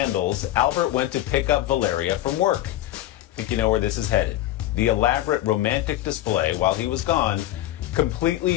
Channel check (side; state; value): right; quieter; 14.2 dB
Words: Albert went to pick up Valeria from work. I think you know where this is headed. The elaborate romantic display, while he was gone,